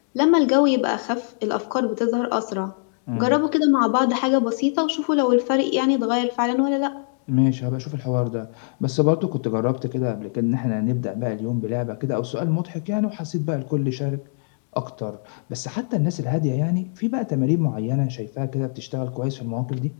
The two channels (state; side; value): silent; right; digital silence